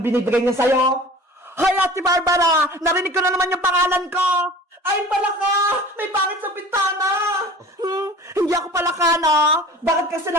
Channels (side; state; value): both; normal; correlation 0.42